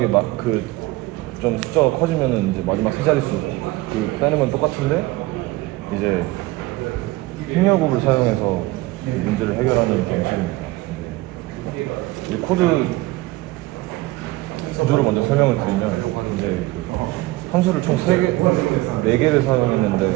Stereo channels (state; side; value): quieter; left; 19.4 dB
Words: 좀 숫자가 커지면은 이제 마지막 세 자릿수 빼는 건 똑같은데 이제 행렬곱을 사용해서 문제를 해결하는 방식입니다. 이 코드 구조를 먼저 설명을 드리면 이제 그 함수를 총 4개를 사용했는데